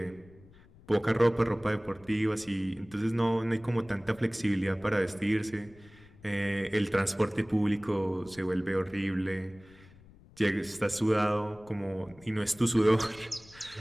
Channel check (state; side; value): noise; left; rumble, 24 dB below the sound